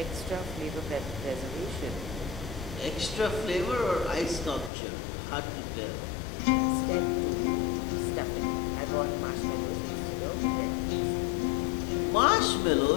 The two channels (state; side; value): drops out; right; at 4.7 s